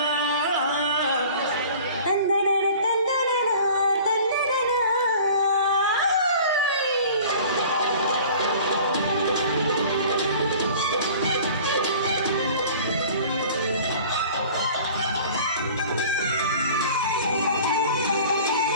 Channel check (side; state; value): both; inverted; correlation -0.45